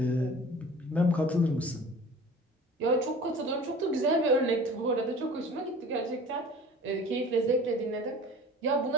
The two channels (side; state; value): both; normal; correlation 0.42